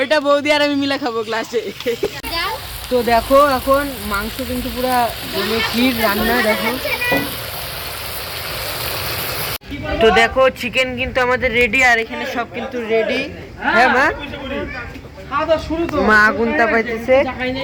বৌদি আর আমি মিলে খাবো ক্লাসে। তো দেখো এখন মাংস কিন্তু পুরা ক্ষীর রান্না। দেখো, তো দেখো চিকেন কিন্তু আমাদের রেডি, আর এখানে সব কিন্তু রেডি। হ্যাঁ মা, মা আগুন তাপাইতেছে।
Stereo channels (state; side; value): identical; both; correlation 1.00